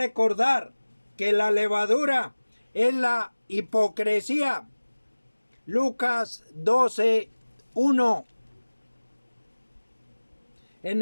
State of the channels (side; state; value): both; inverted; correlation -1.00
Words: que la levadura es la hipocresía. Lucas 12, 1. En